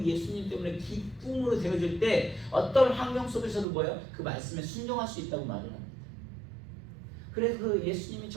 예수님 때문에 기쁨으로 되어질 때 어떤 환경 속에서도 뭐예요? 그 말씀에 순종할 수 있다고 말을 합니다. 그래서 그 예수님이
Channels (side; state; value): left; drops out; at 3.7 s